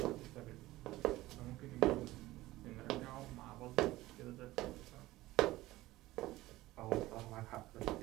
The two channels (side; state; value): left; quieter; 17.5 dB